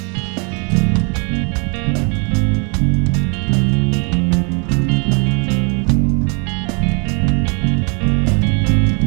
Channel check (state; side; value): quieter; left; 35.4 dB